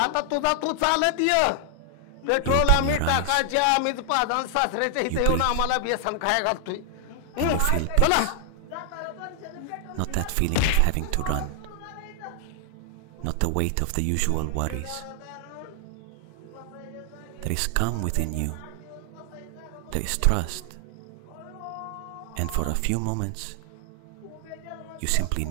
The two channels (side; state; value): both; different; correlation 0.00